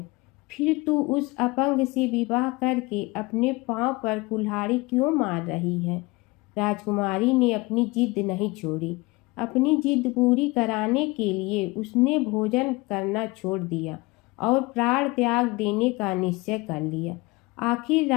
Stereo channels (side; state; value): right; quieter; 23.5 dB